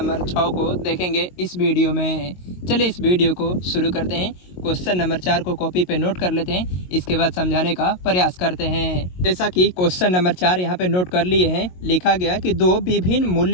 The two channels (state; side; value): late; right; 22 ms